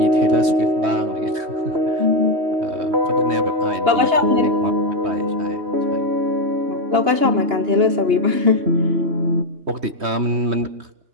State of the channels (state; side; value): late; left; 3.2 ms